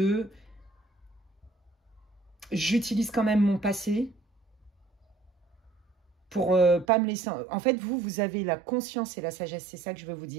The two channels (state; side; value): drops out; left; at 6.9 s